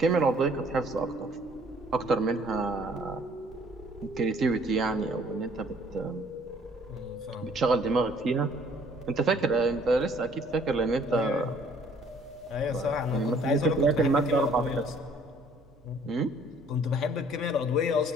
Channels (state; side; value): noise; right; hum, 27 dB below the sound